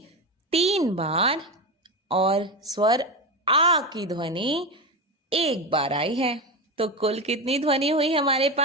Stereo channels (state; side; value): normal; both; correlation 0.18